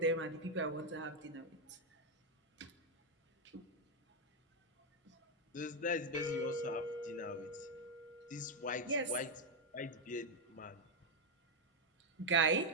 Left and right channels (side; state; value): both; normal; correlation 0.02